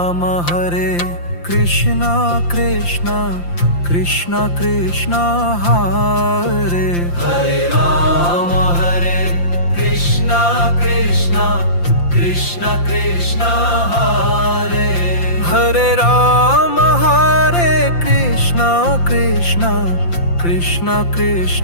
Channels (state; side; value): late; right; 5.8 ms